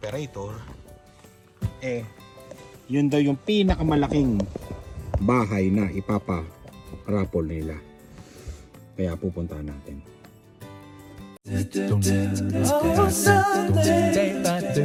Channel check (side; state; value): both; identical; correlation 1.00